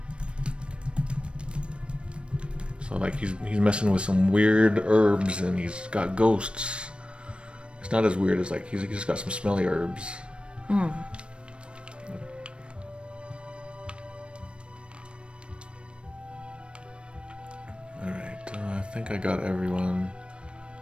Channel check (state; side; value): late; left; 0.057 ms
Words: like he's messing with some weird herbs and he's got ghosts. It's not as weird as like he's just got some smelly herbs. Mm. Alright, I think I got everyone.